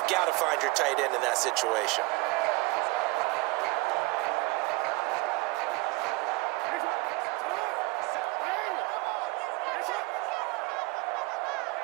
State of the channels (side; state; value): left; quieter; 23.4 dB